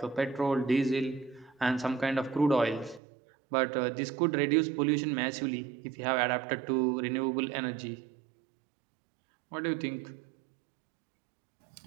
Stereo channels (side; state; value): left; drops out; at 3.0 s